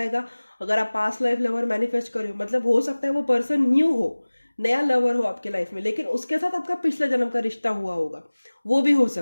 अगर आप पास्ट लाइफ लवर मैनिफेस्ट करो, मतलब हो सकता है वो पर्सन न्यू हो, नया लवर हो आपके लाइफ में, लेकिन उसके साथ आपका पिछला जन्म का रिश्ता हुआ होगा, वो भी हो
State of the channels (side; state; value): both; inverted; correlation -1.00